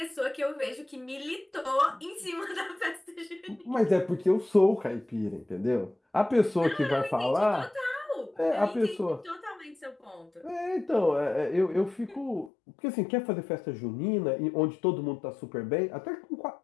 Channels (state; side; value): drops out; right; at 12.5 s